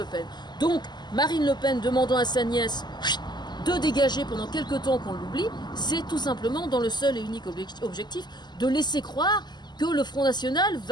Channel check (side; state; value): right; late; 0.21 ms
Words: Pen. Donc Marine Le Pen demandant à sa nièce de dégager pendant quelque temps qu'on l'oublie, c'est tout simplement dans le seul et unique objectif de laisser croire que le Front National